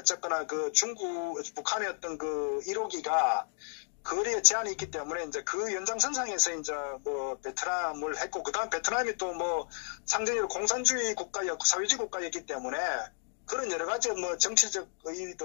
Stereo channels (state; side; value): silent; right; 56 dB below the other